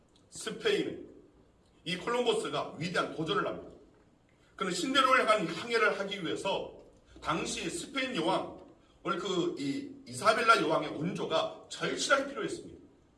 스페인의 이 콜럼버스가 위대한 도전을 합니다. 그는 신대륙을 향한 항해를 하기 위해서 당시 스페인 여왕, 오늘 이 이사벨라 여왕의 온조가 절실하게 필요했습니다.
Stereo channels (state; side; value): identical; both; correlation 1.00